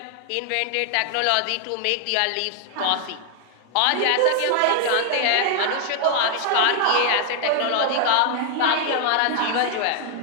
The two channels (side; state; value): both; different; correlation 0.00